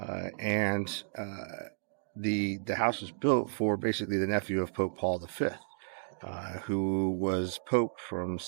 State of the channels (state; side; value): silent; left; digital silence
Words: and the house was built for basically the nephew of Pope Paul V, who was Pope from